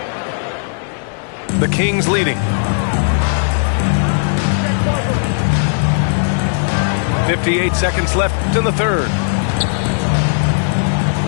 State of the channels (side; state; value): right; silent; 69 dB below the other